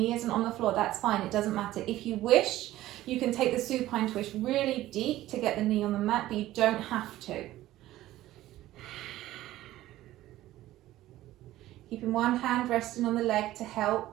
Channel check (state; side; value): quieter; left; 15.2 dB